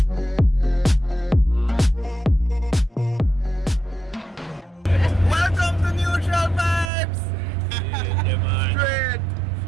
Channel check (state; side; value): drops out; left; at 6.9 s